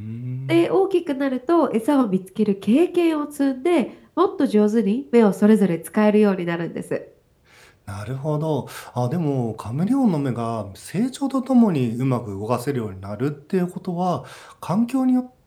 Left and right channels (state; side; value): identical; both; correlation 1.00